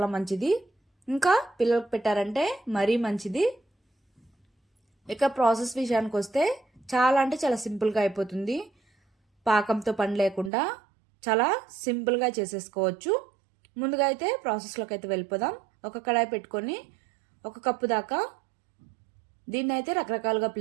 మంచిది. ఇంకా పిల్లలకు పెట్టారంటే మరీ మంచిది. ఇక ప్రాసెస్ విషయానికి వస్తే చాలా అంటే చాలా సింపుల్గా అయిపోతుంది. పాకంతో పని లేకుండా చాలా సింపుల్గా చేసేసుకోవచ్చు. ముందుగా అయితే ప్రాసెస్లోకి అయితే వెళ్ళిపోదాం. ఒక కడాయి పెట్టుకొని 1 కప్పు దాకా, దీన్ని అయితే రకరకాలుగా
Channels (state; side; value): drops out; left; at 10.5 s